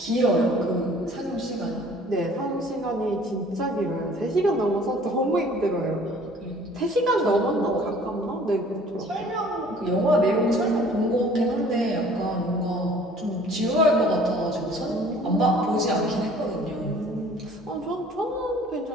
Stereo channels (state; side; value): normal; both; correlation 0.52